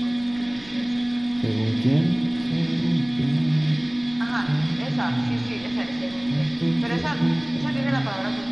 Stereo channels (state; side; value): noise; right; rumble, 22 dB below the sound